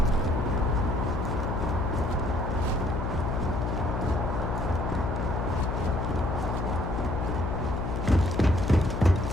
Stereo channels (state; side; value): noise; left; hum, 2 dB below the sound